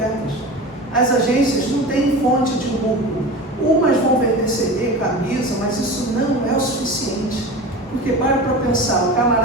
As agências não têm fonte de lucro. Umas vão vender CD, camisa, mas isso não é o suficiente. Porque para pensar, o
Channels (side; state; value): both; normal; correlation 0.31